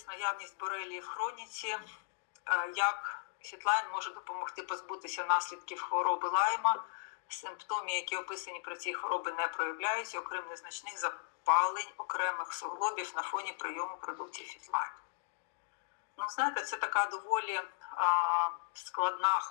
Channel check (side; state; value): right; silent; digital silence